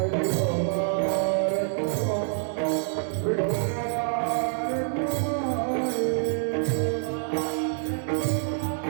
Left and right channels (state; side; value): silent; left; digital silence